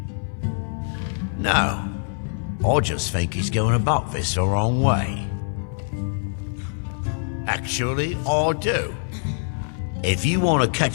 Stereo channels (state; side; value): silent; right; digital silence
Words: No, I just think he's going about this the wrong way. Actually, I do. If you want to